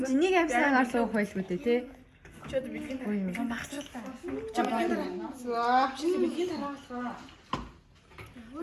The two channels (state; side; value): identical; both; correlation 1.00